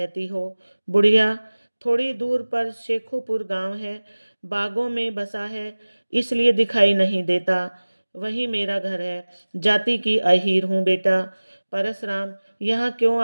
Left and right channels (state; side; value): inverted; both; correlation -1.00